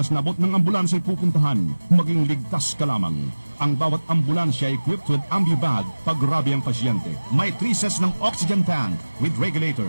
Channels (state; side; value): inverted; both; correlation -1.00